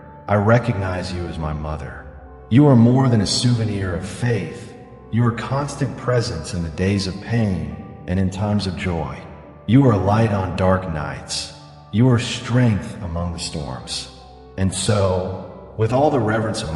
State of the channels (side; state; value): both; identical; correlation 1.00